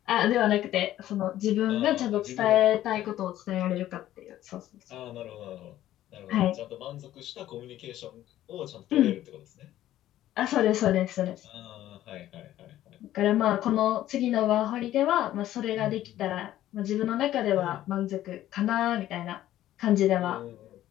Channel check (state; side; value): quieter; right; 13.4 dB